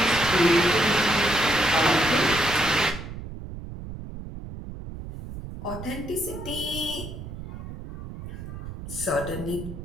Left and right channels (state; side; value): noise; right; rumble, 10 dB below the sound